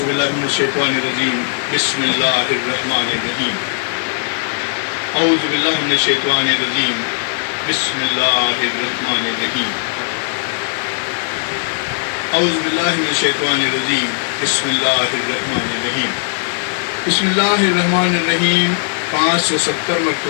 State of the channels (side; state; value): right; silent; digital silence